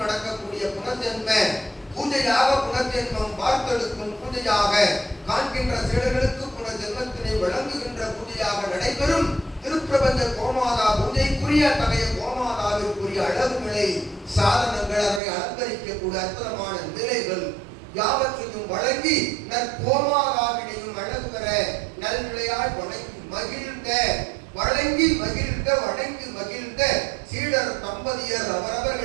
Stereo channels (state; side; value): drops out; left; at 15.2 s